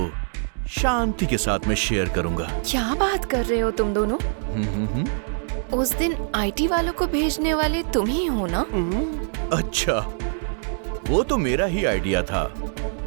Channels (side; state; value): left; silent; 61 dB below the other